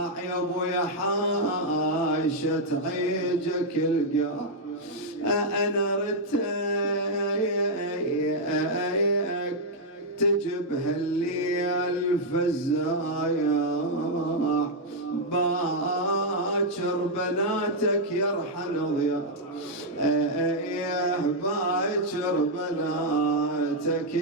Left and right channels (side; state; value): both; normal; correlation -0.03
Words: ابويا حاشة تعيجك القاع، انا رتيك تجب هالليل فزايا باكر بناتك يرحل ضياء، باكر بناتك